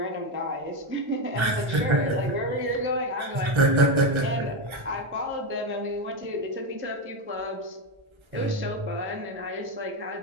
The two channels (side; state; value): left; late; 1.3 ms